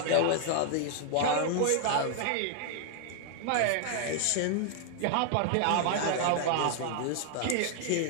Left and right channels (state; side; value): different; both; correlation 0.00